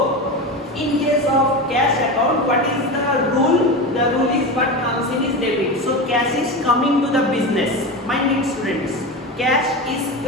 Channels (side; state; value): both; normal; correlation 0.23